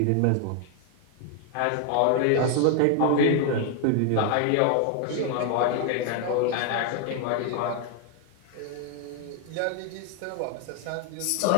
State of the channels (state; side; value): different; both; correlation 0.00